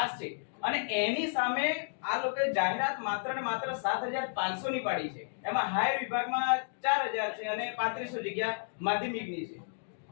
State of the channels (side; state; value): right; silent; digital silence